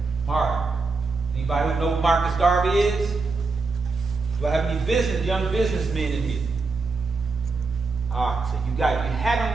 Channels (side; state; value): left; quieter; 4.1 dB